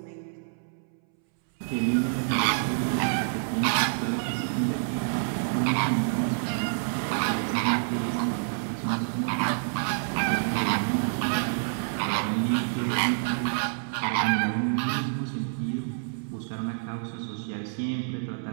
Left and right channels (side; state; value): left; silent; 60 dB below the other